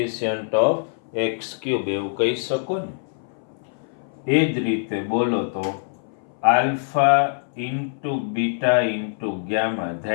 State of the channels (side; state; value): right; silent; 61 dB below the other